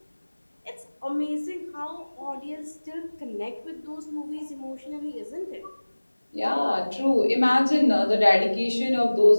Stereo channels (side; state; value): both; inverted; correlation -1.00